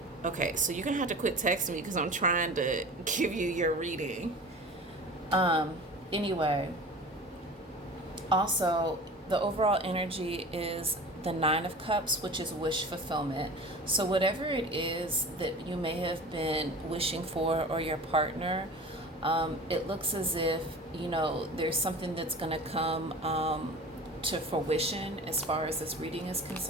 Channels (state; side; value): normal; both; correlation 0.37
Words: Okay, so you're gonna have to quit texting me because I'm trying to give you your reading. Anyway, also the overall energy is the Nine of Cups, which is wish fulfillment. So whatever it is that you may have been wishing for or your partner, it looks as if there's something that's gonna come to fruition as far as this reading is